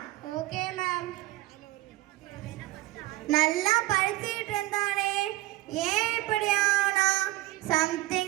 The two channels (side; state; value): left; quieter; 17.8 dB